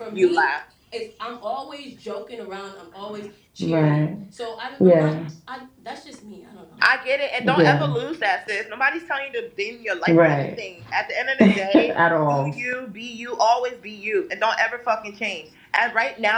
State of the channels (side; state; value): both; identical; correlation 1.00